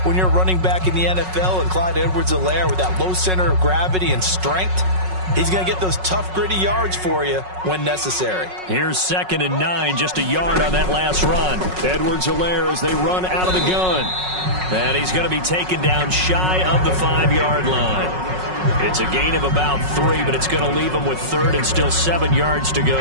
when you're running back in the NFL. And Clyde Edwards-Helaire, with that low center of gravity and strength, he's going to get those tough, gritty yards for you when necessary. Here's 2nd and 9, just a yard on that last run. Edwards-Helaire as they run out of the gun. And he's going to be taken down shy of the 5-yard line. It's a gain of about 3, but it's going to leave him with 3rd and still 7 yards to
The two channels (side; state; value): left; late; 5.4 ms